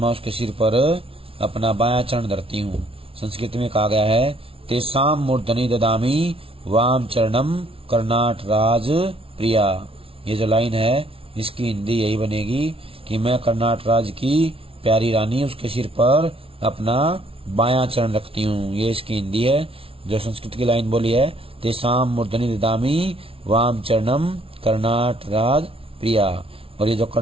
उसके सिर पर अपना बायां चरण धरती हूँ। संस्कृत में कहा गया है तेसाम मूर्धनि ददामी वाम चरणम कर्नाट राज प्रिया। ये जो लाइन है इसकी हिंदी यही बनेगी कि मैं कर्नाट राज की प्यारी रानी उसके सिर पर अपना बायां चरण रखती हूँ। ये इसकी हिंदी है। जो संस्कृत की लाइन बोली है तेसाम मूर्धनि ददामी वाम चरणम कर्नाट राज प्रिया। और ये जो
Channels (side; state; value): left; late; 0.26 ms